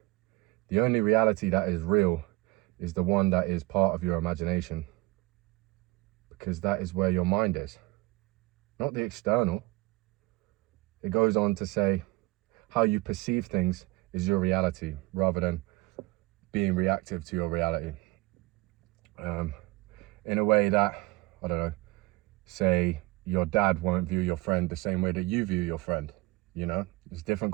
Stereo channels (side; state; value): left; quieter; 21.4 dB